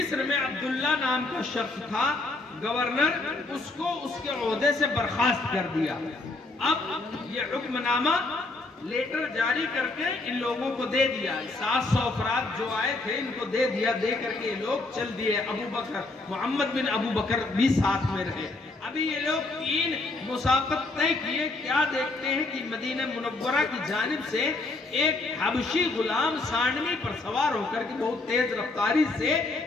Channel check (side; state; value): right; quieter; 3.2 dB